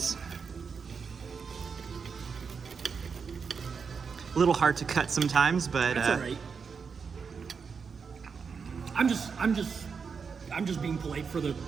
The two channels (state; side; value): quieter; left; 5.7 dB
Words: A little hard to cut sometimes, but That's all right. I'm just being polite for the